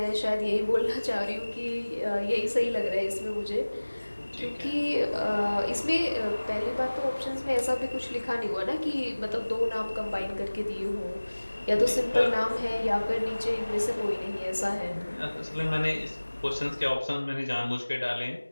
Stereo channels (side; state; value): both; inverted; correlation -1.00